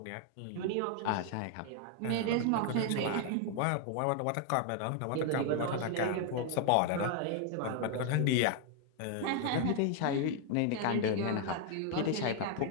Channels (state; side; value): different; both; correlation 0.00